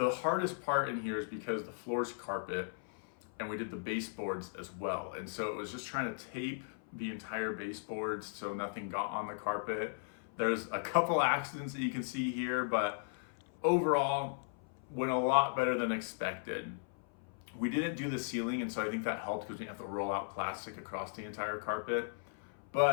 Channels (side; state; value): right; silent; 53 dB below the other